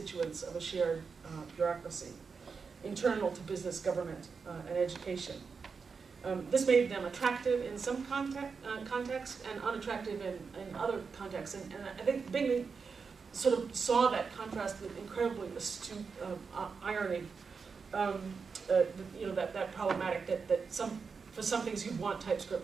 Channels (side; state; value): left; quieter; 5.3 dB